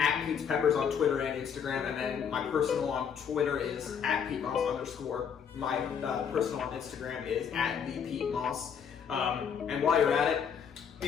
Pete's Peppers on Twitter and Instagram, and then my personal on Twitter is @PeteMoss_. My personal on Instagram is @ThePeteMoss. And while you're at it,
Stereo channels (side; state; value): right; quieter; 7.4 dB